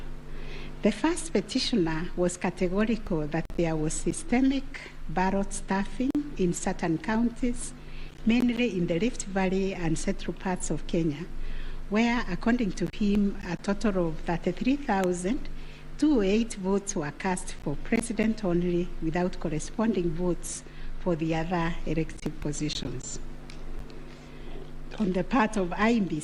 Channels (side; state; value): both; identical; correlation 1.00